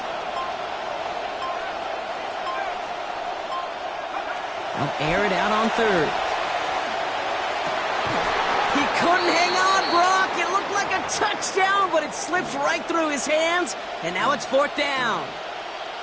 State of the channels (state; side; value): identical; both; correlation 1.00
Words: They'll air it out on 3rd. He couldn't hang on, Brock. It looked like a touchdown, but it slips right through his hands, and now it's 4th down.